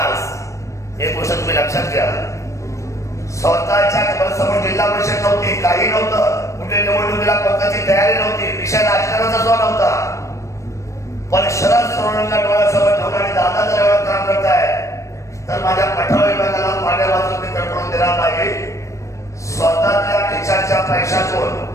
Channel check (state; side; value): late; right; 0.15 ms